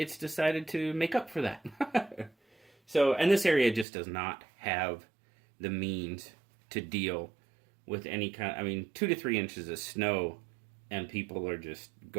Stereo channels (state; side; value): drops out; left; at 3.9 s